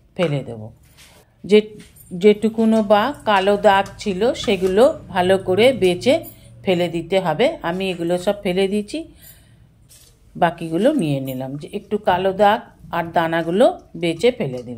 ফেলে দেব। যেটুকুনো বা কালো দাগ ছিল সেগুলো ভালো করে বেছে ফেলে দিতে হবে। আমি এগুলো সব ফেলে দিয়েছি, বাকিগুলো নিয়ে নিলাম। যে একটু কালো দাগ আর দানাগুলো বেছে ফেলে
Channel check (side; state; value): both; identical; correlation 1.00